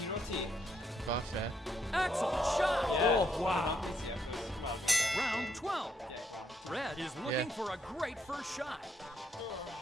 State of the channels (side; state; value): both; normal; correlation 0.75